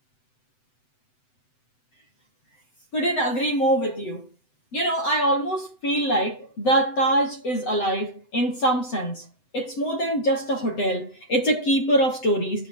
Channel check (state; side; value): late; right; 7.9 ms